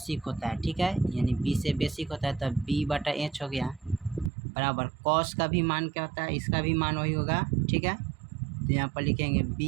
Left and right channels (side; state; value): left; drops out; at 4.3 s